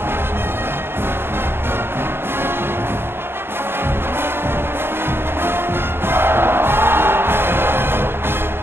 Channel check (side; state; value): left; late; 0.11 ms